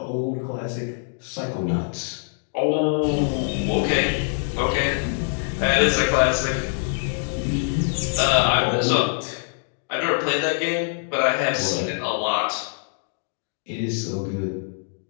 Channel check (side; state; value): right; silent; digital silence